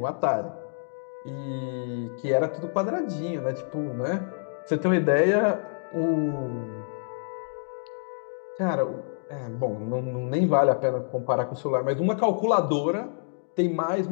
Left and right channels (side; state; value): right; silent; digital silence